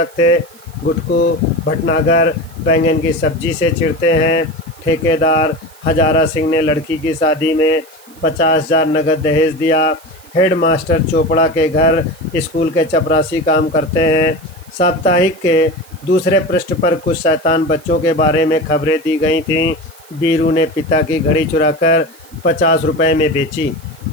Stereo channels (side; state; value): right; noise; hiss, 25 dB below the sound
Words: थे: गुटकू भटनागर बैंगन की सब्जी से चिढ़ते हैं, ठेकेदार हजारा सिंह ने लड़की की शादी में 50,000 नगद दहेज दिया, हेडमास्टर चोपड़ा के घर स्कूल के चपरासी काम करते हैं। साप्ताहिक के दूसरे पृष्ठ पर कुछ शैतान बच्चों के बारे में खबरें दी गई थीं। बीरू ने पिता की घड़ी चुराकर 50 रुपए में बेची।